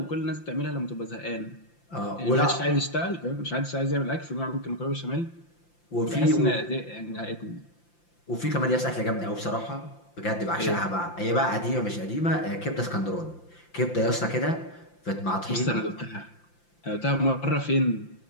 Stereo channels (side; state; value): right; late; 5.8 ms